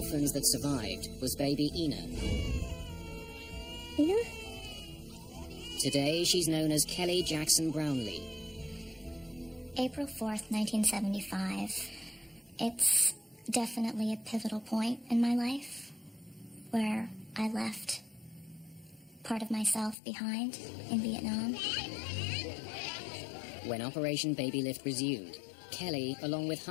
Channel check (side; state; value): right; drops out; at 20.0 s